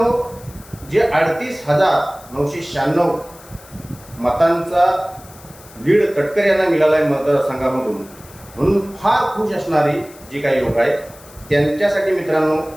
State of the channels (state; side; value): noise; left; hiss, 22 dB below the sound